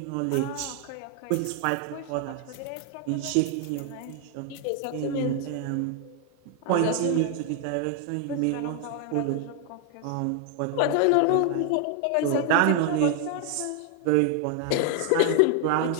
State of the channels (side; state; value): both; different; correlation 0.00